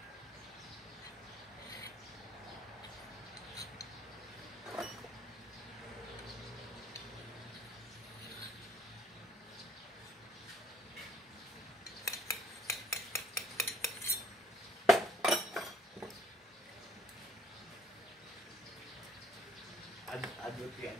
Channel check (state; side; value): normal; both; correlation 0.63